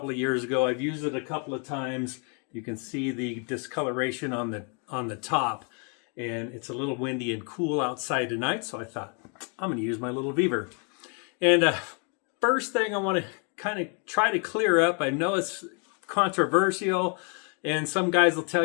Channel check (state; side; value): quieter; right; 38.2 dB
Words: of years ago. I've used it a couple of times. You can see the discoloration on the top. And it's a little windy and cool outside tonight, so I thought, I'm going to use my little VEVOR. And first thing I want to kind of try to clear up, I know it's controversial, and some guys will